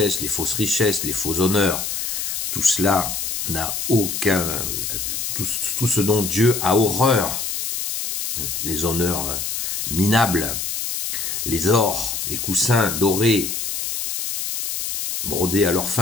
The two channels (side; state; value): left; noise; hiss, 3 dB below the sound